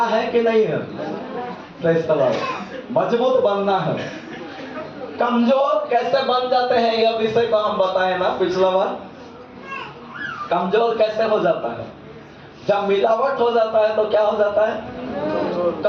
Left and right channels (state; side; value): identical; both; correlation 1.00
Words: है कि नहीं है? Praise the Lord. मजबूत बनना है। कमजोर कैसे बन जाते हैं यह विषय को हम बताए ना पिछला बार। कमजोर कैसे हो जाता है? जब मिलावट हो जाता है तो क्या हो जाता है?